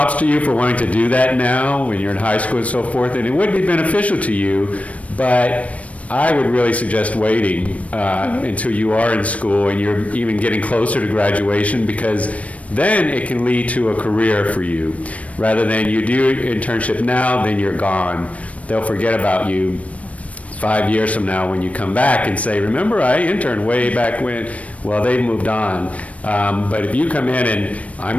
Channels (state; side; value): late; right; 0.066 ms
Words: to you for wanting to do that now when you're in high school and so forth, and it would be beneficial to you, but I would really suggest waiting until you are in school and you're even getting closer to graduation, because then it can lead to a career for you. Rather than you do internship now, then you're gone. They'll forget about you 5 years from now when you come back and say, remember, I interned way back when. Well, they've moved on. But if you come in and I'm